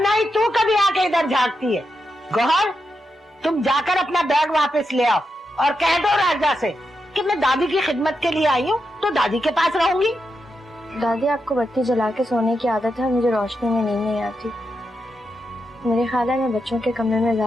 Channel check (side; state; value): both; normal; correlation 0.86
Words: ही तू कभी आके इधर झांकती है। गौहर, तुम जाकर अपना बैग वापस ले आओ और कह दो राजा से कि मैं दादी की खिदमत के लिए आई हूँ तो दादी के पास रहूंगी। दादी, आपको बत्ती जला के सोने की आदत है, मुझे रोशनी में नींद नहीं आती। मेरे ख्याल है मैं बच्चों के कमरे में